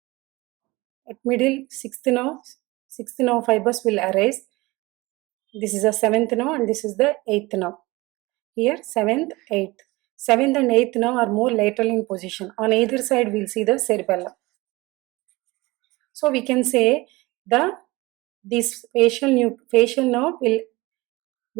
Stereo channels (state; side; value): quieter; left; 21.9 dB